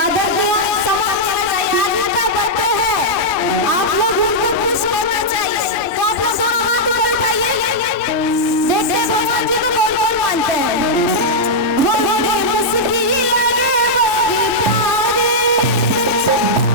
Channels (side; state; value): both; normal; correlation -0.06